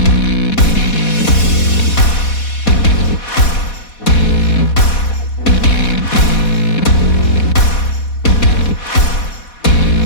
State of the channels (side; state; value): right; late; 4.1 ms